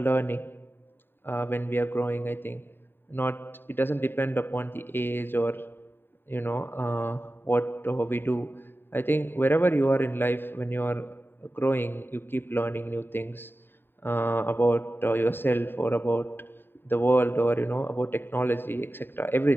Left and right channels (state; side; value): late; right; 0.099 ms